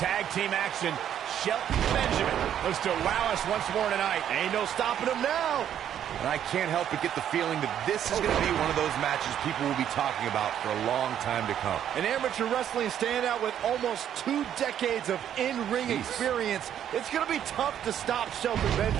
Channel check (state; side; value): quieter; left; 10.0 dB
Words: team action, Shelton Benjamin looks to wow us once more tonight. Ain't no stopping him now. And I can't help but get the feeling that this is going to be one of those matches people will be talking about for a long time to come. An amateur wrestling standout with almost 2 decades of in-ring experience. It's going to be tough to stop Shelton